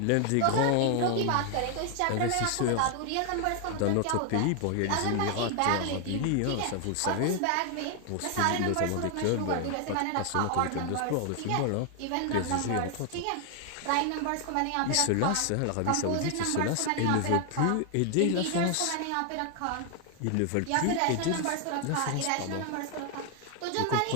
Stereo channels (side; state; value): both; different; correlation 0.00